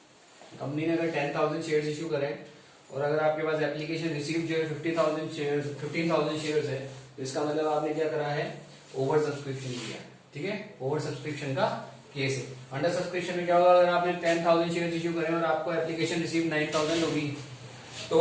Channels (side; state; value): both; identical; correlation 1.00